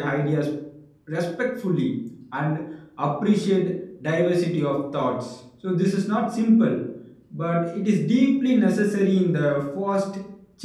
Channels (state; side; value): identical; both; correlation 1.00